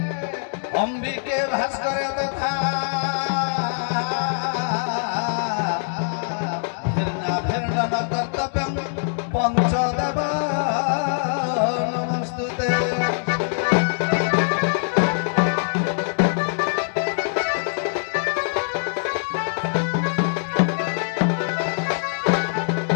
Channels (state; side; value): silent; right; 62 dB below the other